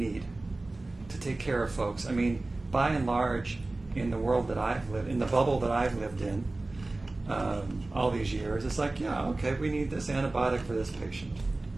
to take care of folks. I mean, by and large, in the world that I've lived, in the bubble that I've lived in all these years, it's like, yeah, okay, we need this antibiotic for this patient.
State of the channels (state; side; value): quieter; left; 3.0 dB